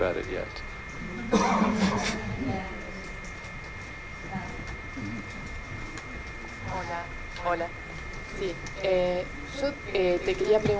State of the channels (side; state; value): both; identical; correlation 1.00